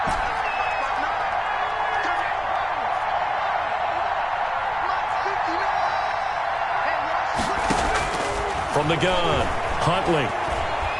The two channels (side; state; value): both; identical; correlation 1.00